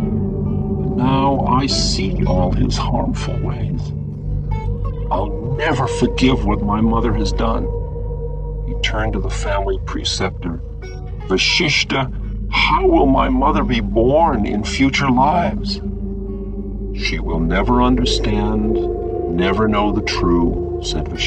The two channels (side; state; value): both; identical; correlation 1.00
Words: But now I see all his harmful ways. I'll never forgive what my mother has done. He turned to the family preceptor. Vashishta, how will my mother be born in future lives? She will never understand, never know the true, said